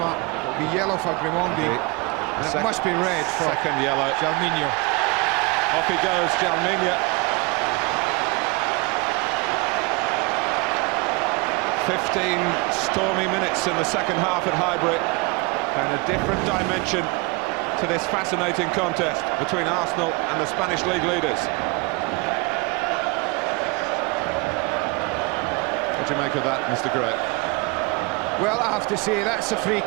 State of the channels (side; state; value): left; quieter; 26.8 dB